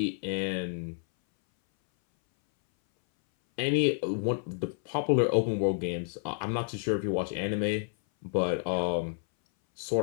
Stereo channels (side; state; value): right; silent; 58 dB below the other